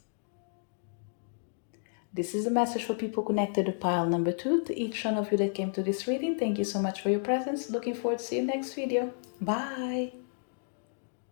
This is a message for people connected to pile number 2. To each one of you that came to this reading, thank you so much for your presence. Looking forward to see you next video. Bye.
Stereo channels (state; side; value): silent; right; digital silence